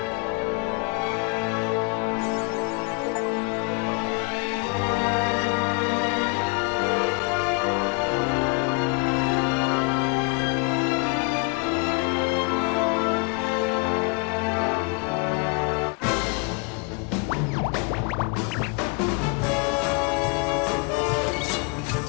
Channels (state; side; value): quieter; right; 31.7 dB